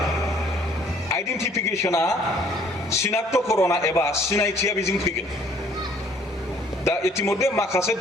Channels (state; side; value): normal; both; correlation 0.58